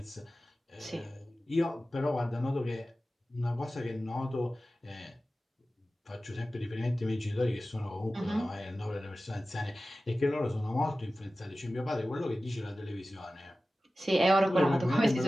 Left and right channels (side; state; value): both; normal; correlation 0.95